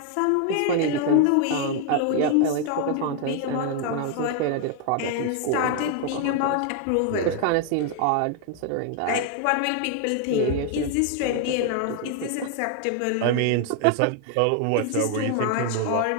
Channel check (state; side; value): different; both; correlation 0.00